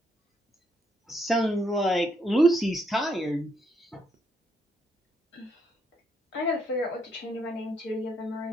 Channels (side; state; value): both; normal; correlation 0.75